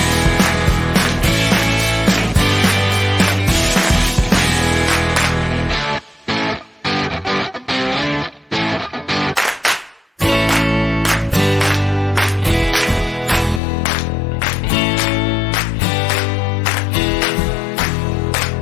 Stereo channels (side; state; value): right; drops out; at 13.6 s